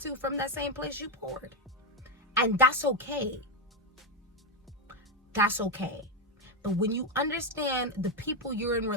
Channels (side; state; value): both; normal; correlation 0.06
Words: from that same place you poured. And that's okay. That's okay. But when you understand the people you're in